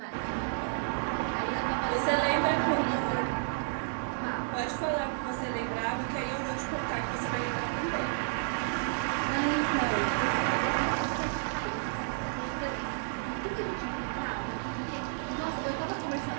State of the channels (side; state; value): left; silent; digital silence